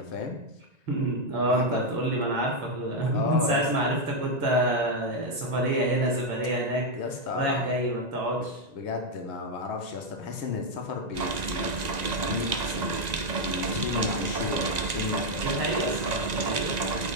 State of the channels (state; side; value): late; left; 1.9 ms